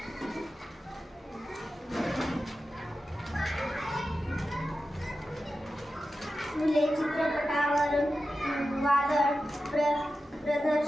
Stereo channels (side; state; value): both; normal; correlation 0.92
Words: फुले चित्रपटावरून वादळ